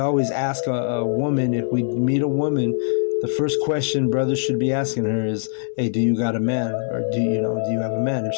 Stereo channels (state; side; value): silent; right; digital silence